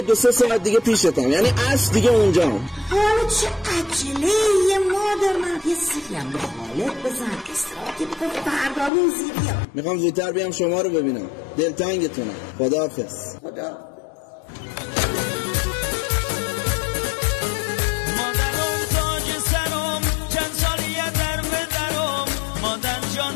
ساعت دیگه پیشتم، یعنی اصل دیگه اونجام. حالا چه عجله یه مادر، من یه سریم به خالت بزن که بکن فردا روزی بیا. میخوام زودتر بیام شما رو ببینم. دلتنگتونم. خداحافظ. خدا. مادرم تاج سرم، چند سالیه در بدرم، مادر جان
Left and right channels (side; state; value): right; drops out; at 8.9 s